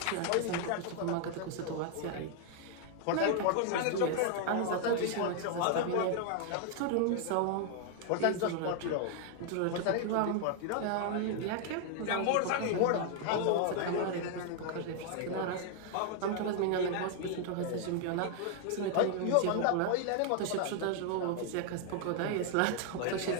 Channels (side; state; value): both; different; correlation 0.00